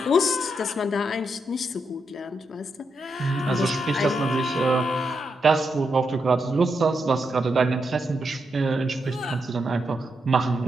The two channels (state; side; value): normal; both; correlation 0.83